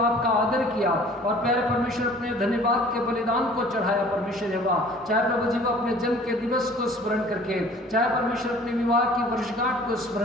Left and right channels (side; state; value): both; normal; correlation 0.50